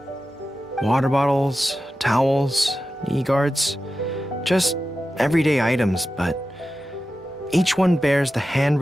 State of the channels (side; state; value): both; normal; correlation 0.92